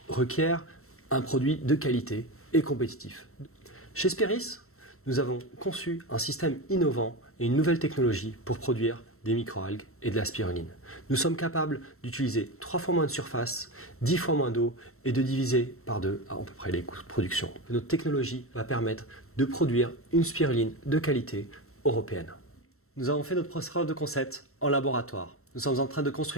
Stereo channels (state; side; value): late; right; 0.63 ms